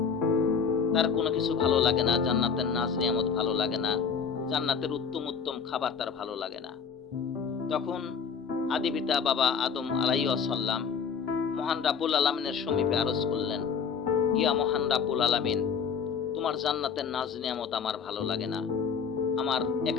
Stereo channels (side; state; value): right; quieter; 6.4 dB